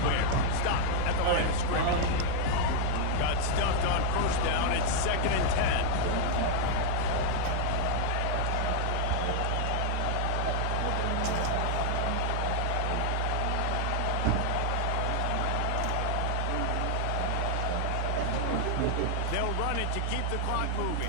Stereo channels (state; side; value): different; both; correlation 0.00